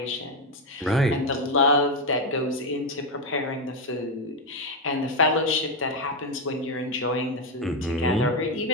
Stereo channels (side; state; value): both; normal; correlation 0.07